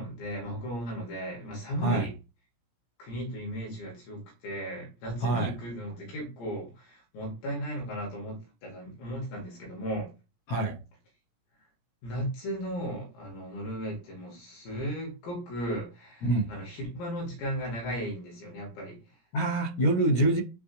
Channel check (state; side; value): late; right; 17 ms